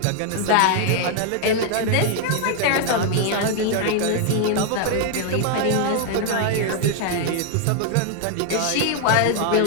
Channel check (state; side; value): different; both; correlation 0.00